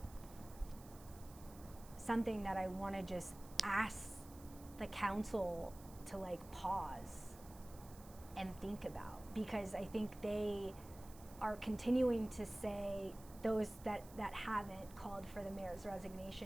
something that I want to just ask the council to like pause and think about, because I think they are continuing to say, those that haven't called for the mayor's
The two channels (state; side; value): noise; right; hiss, 20 dB below the sound